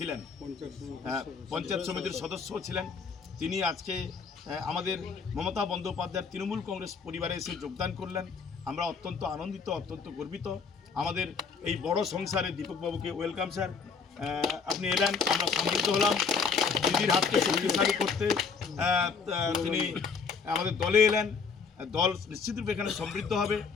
পঞ্চায়েত সমিতির সদস্য ছিলেন, তিনি আজকে আমাদের মমতা বন্দ্যোপাধ্যায়ের তৃণমূল কংগ্রেস পরিবারে এসে যোগদান করলেন। আমরা অত্যন্ত আনন্দিত, অত্যন্ত গর্বিত। আমাদের এই বড় সংসারে দীপকবাবুকে ওয়েলকাম স্যার। আপনি এলেন, আমরা সমৃদ্ধ হলাম। দিদির হাতকে শক্তিশালী করতে তিনি আমাদের দলে এলেন। দল নিশ্চিতরূপে এখানে সমৃদ্ধ হবে।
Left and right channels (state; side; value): quieter; right; 5.5 dB